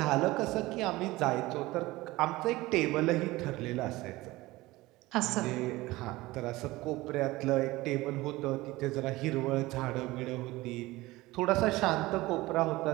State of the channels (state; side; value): quieter; left; 19.4 dB